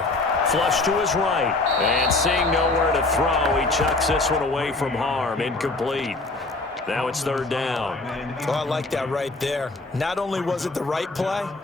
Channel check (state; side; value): quieter; right; 3.2 dB